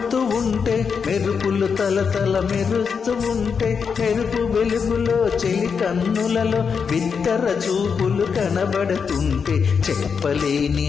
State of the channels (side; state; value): right; quieter; 6.1 dB